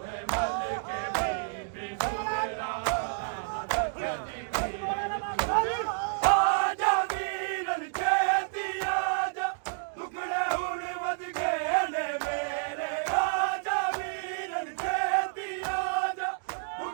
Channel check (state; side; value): silent; left; digital silence